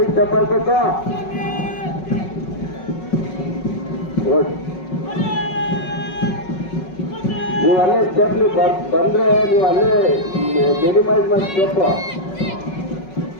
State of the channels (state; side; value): late; right; 5.4 ms